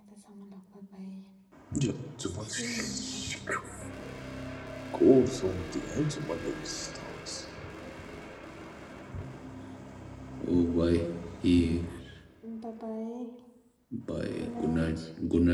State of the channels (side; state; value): both; identical; correlation 1.00